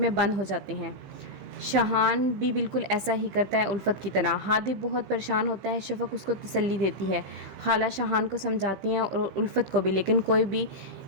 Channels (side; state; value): left; late; 15 ms